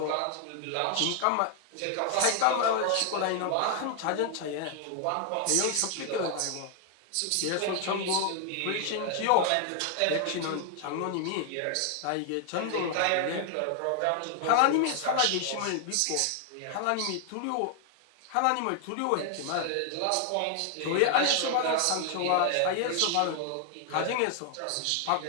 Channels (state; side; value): different; both; correlation 0.00